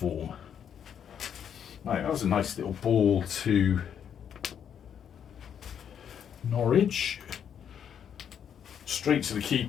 Right, that was a nice little ball to Norwich. Straight to the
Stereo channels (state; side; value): quieter; right; 8.5 dB